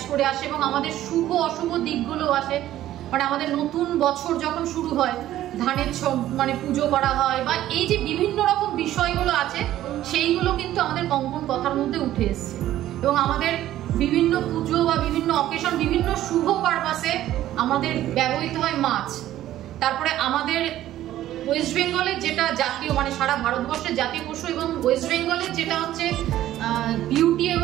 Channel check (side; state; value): left; quieter; 13.4 dB